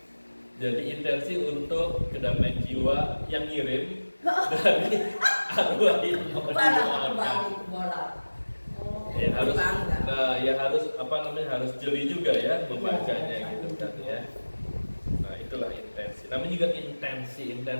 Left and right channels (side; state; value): both; inverted; correlation -1.00